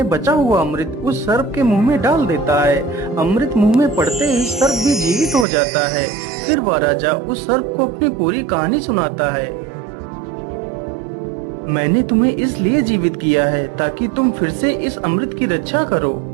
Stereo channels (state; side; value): drops out; left; at 5.5 s